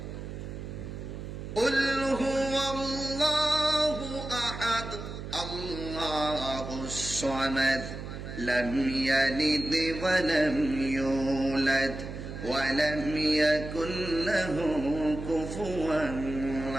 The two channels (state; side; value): noise; right; hum, 9 dB below the sound